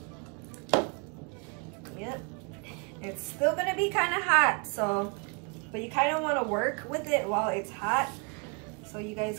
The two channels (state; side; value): quieter; left; 34.8 dB